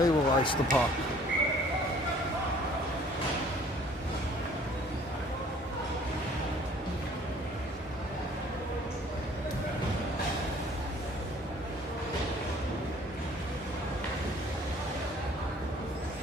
will ice the puck.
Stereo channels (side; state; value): both; normal; correlation 0.55